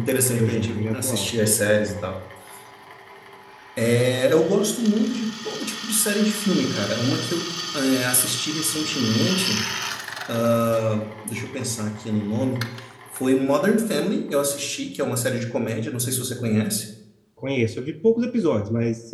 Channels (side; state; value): both; identical; correlation 1.00